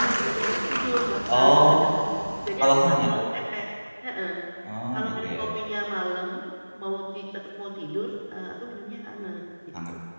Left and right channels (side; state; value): both; inverted; correlation -1.00